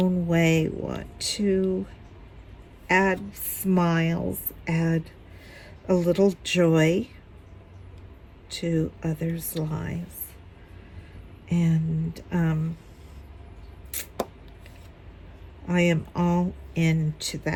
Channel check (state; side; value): identical; both; correlation 1.00